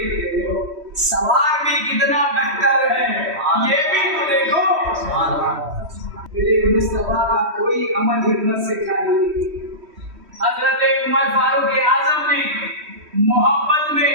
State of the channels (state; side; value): late; left; 3.1 ms